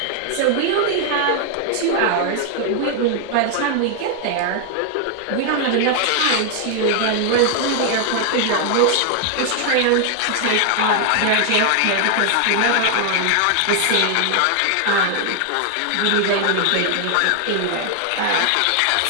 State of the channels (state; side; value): different; both; correlation 0.00